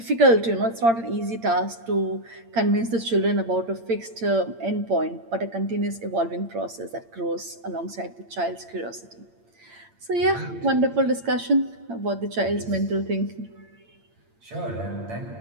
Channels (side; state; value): left; late; 8.8 ms